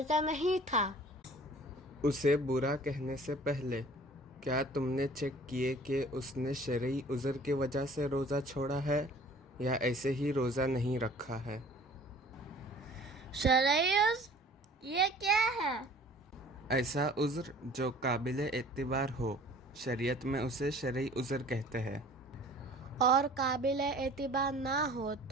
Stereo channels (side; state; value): both; normal; correlation 0.49